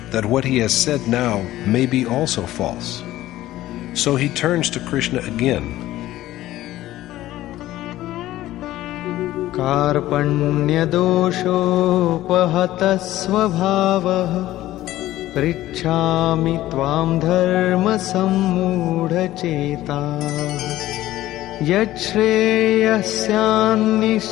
that what he has said now may be also false. So he turns to Krishna again. कार्पण्यदोषोपहतः स्वभावः पृच्छामि त्वां धर्मसम्मूढचेताः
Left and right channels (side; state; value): right; quieter; 15.1 dB